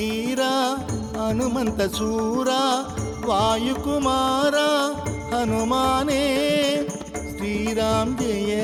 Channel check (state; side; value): identical; both; correlation 1.00